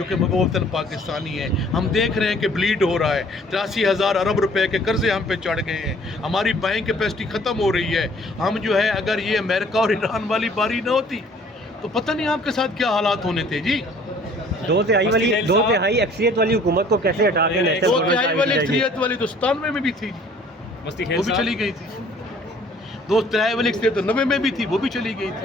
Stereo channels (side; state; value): both; normal; correlation 0.55